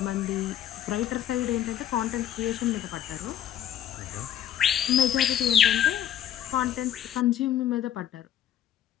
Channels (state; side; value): quieter; right; 10.8 dB